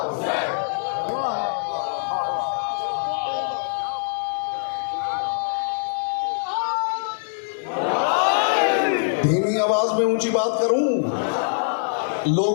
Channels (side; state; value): right; silent; digital silence